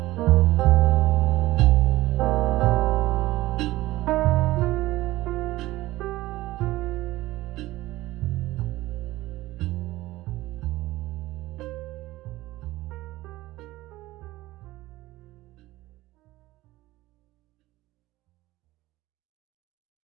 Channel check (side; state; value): left; quieter; 17.6 dB